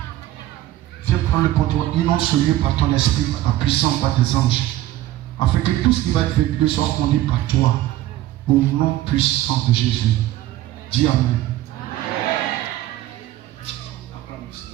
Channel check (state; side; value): quieter; left; 14.6 dB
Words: Viens prendre le contrôle, inonde ce lieu par ton esprit, par ta puissance, par tes anges, afin que tout ce qui va être vécu soit conduit par toi, au nom puissant de Jésus. Dis Amen.